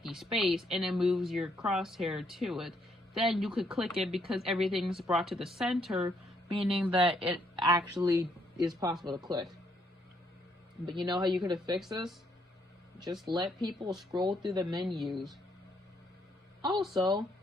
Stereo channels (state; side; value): normal; both; correlation 0.73